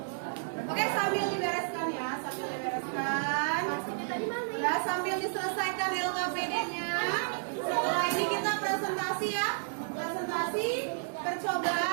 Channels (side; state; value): left; silent; digital silence